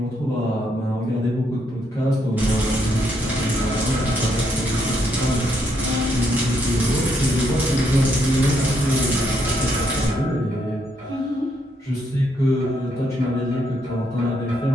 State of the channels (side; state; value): both; normal; correlation 0.75